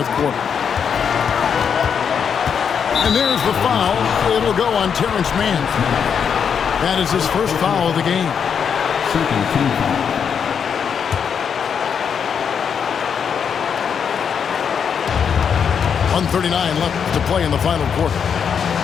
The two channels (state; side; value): quieter; right; 7.2 dB